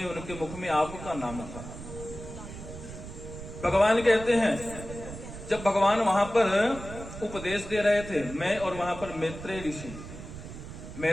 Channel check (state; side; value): noise; right; rumble, 11 dB below the sound